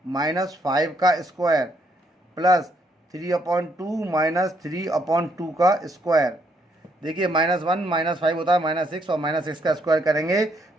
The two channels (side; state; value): both; normal; correlation 0.72